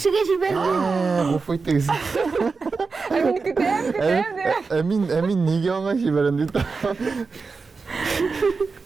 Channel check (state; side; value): quieter; left; 4.5 dB